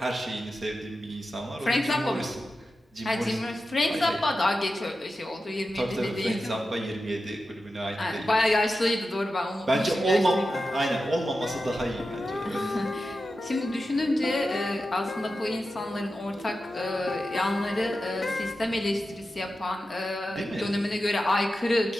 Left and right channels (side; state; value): both; normal; correlation 0.92